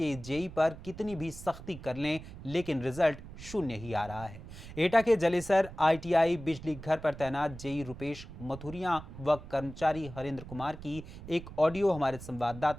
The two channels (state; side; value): noise; right; rumble, 14 dB below the sound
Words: जेई पर कितनी भी सख्ती कर लें, लेकिन रिजल्ट शून्य ही आ रहा है। एटा के जलेसर ITI बिजली घर पर तैनात जेई रुपेश मथुरिया व कर्मचारी हरेंद्र कुमार की एक ऑडियो हमारे